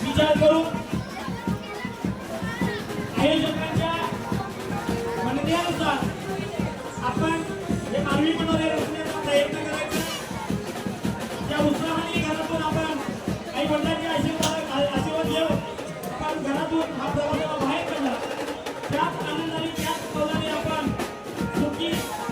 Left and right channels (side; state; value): both; identical; correlation 1.00